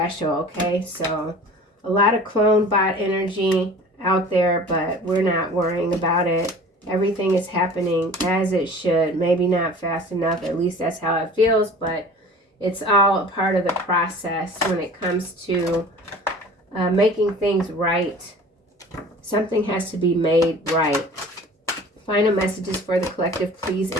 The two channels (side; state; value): both; normal; correlation 0.43